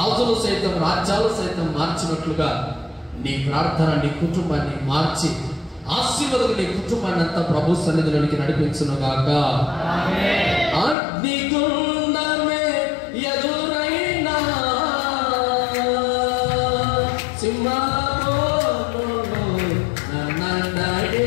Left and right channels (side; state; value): right; drops out; at 11.0 s